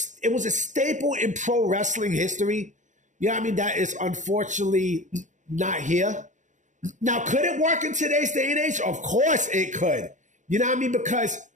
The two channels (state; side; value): late; left; 0.36 ms